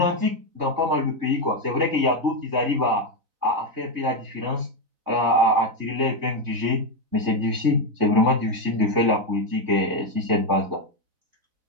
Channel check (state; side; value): late; left; 4.0 ms